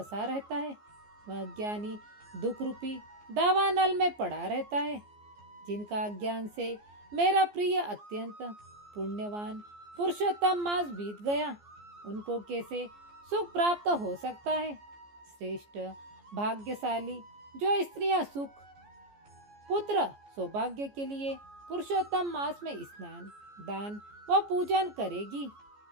रहता है वह अज्ञानी दुख रूपी दावानल में पड़ा रहता है। जिनका अज्ञान से मेरा प्रिय अत्यंत पुण्यवान पुरुषोत्तम मास बीत गया, उनको कैसे सुख प्राप्त हो सकता है। श्रेष्ठ भाग्यशाली जो स्त्रियां सुख पुत्र सौभाग्य के लिए पुरुषोत्तम मास में स्नान दान व पूजन करेगी,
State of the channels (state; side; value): late; left; 14 ms